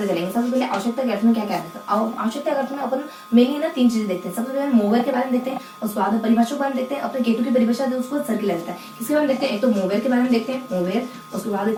चलेंगे। सबसे पहले आवश्यकता के अर्थ में क्या क्या है। आवश्यकता के अर्थ में अपन मेनली ना 3 चीजें देखते हैं। सबसे पहले मोवेर के बारे में देखते हैं, और स्वाद परिभाषा के बारे में देखते हैं। अपने केटू की परिभाषा है उसको सर्किल आ जाता है। किसके बारे में देखते हैं, एक तो मोवेर के बारे में देखते हैं, मोवेर। उसके बाद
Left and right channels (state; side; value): identical; both; correlation 1.00